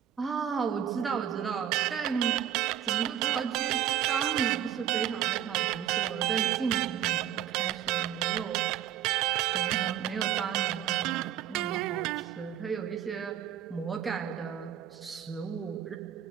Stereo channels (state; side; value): quieter; left; 10.4 dB